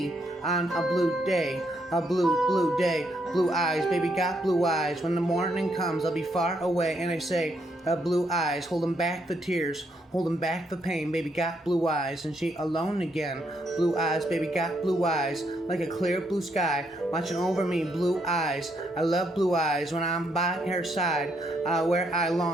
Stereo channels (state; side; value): normal; both; correlation 0.75